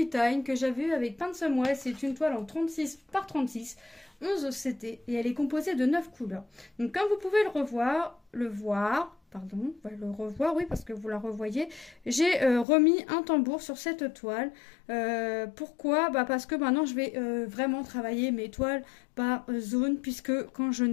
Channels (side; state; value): right; drops out; at 12.7 s